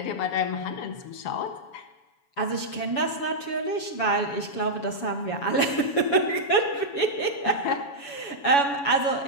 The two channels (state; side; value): late; right; 7.1 ms